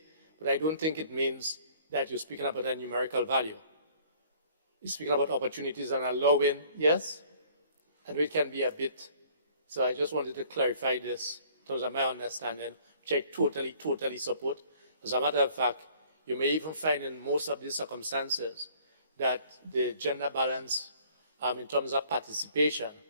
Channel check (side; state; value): both; inverted; correlation -0.56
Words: but I don't think it means that you're speaking about a numerical value. You're speaking about opportunities and allowing, yes, and it can be a bit. So I just wanted to clarify this in terms of my understanding, which I totally support. As a matter of fact, you may even find in most of these circumstances that the gender balance in terms of participation